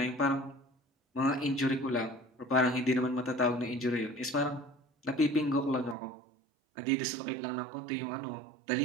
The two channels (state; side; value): drops out; left; at 6.0 s